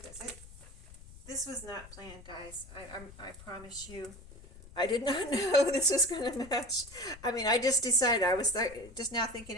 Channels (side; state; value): left; noise; rumble, 18 dB below the sound